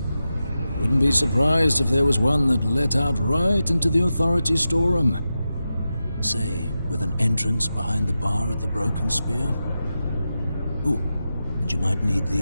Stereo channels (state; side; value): inverted; both; correlation -0.91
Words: Wouldn't be surprised if there was one that let out right into the authority storeroom. Say, with an entrance behind the bar at the Broken Spear. Ooh, and you might need